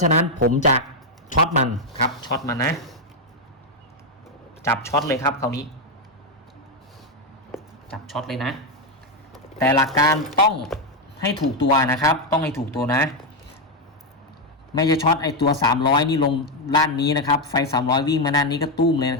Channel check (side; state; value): both; normal; correlation 0.04